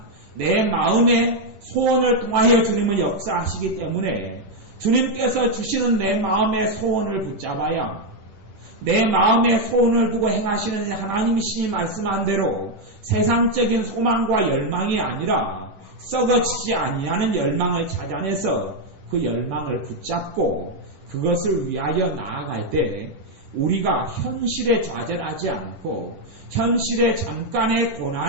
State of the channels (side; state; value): left; late; 10 ms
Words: 내 마음의 소원을 통하여 주님은 역사하시기 때문에 주님께서 주시는 내 마음의 소원을 붙잡아야 내 마음의 소원을 두고 행하시는 하나님이시니 말씀한 대로 세상적인 소망과 열망이 아니라 썩어지지 아니하는 열망을 찾아내서 그 열망을 붙잡고 그것을 위하여 나아갈 때 우리가 현실에 좌절하지 않고 현실의 잠깐의